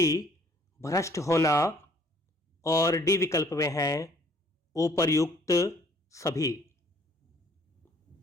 भ्रष्ट होना और डी विकल्प में है उपर्युक्त सभी।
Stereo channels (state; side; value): normal; both; correlation 0.59